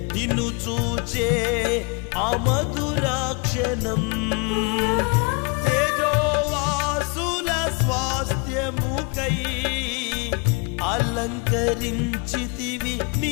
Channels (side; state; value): right; quieter; 32.0 dB